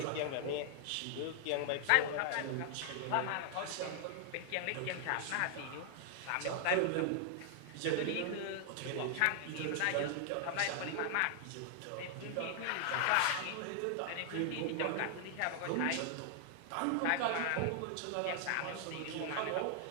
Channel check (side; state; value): both; different; correlation 0.00